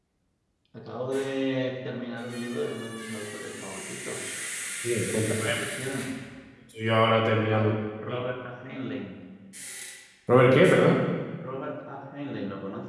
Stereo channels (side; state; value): both; identical; correlation 1.00